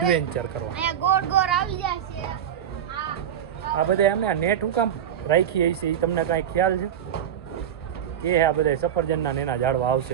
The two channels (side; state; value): left; quieter; 9.6 dB